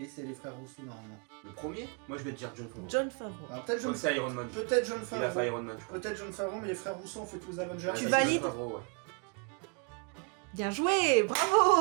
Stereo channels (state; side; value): quieter; left; 36.4 dB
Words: c'est les frères Rousseau normalement. Le premier, moi je vais te dire John Favreau. John Favreau. Alors peut-être Je crois John que c'est Iron Man. Peut-être John Il a fait Favreau. Iron Man, je crois. Peut-être John Favreau, mais les frères Rousseau ont fait tous les Avengers. Ouais, Tu c'est valides John Favreau, ouais. Bien joué,